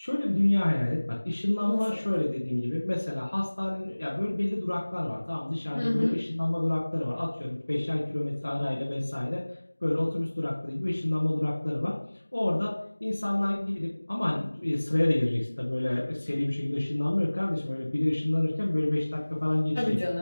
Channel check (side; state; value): both; inverted; correlation -1.00